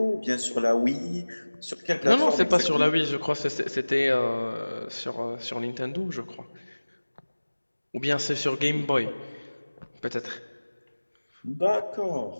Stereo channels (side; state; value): both; inverted; correlation -1.00